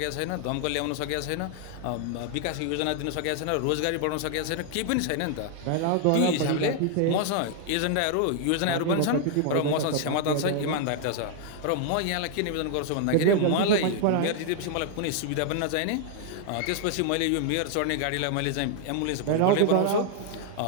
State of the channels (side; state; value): both; different; correlation 0.00